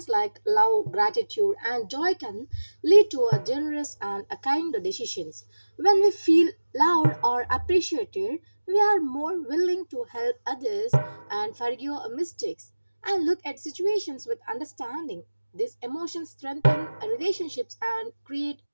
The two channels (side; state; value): both; inverted; correlation -1.00